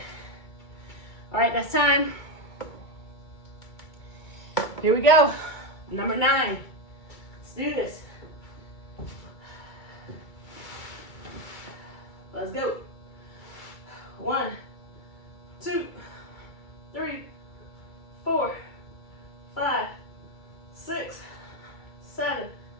All right, that's time. Here we go. Number 9. Let's do this. Let's go. 1, 2, 3, 4, 5, 6, 7,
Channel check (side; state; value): right; late; 2.3 ms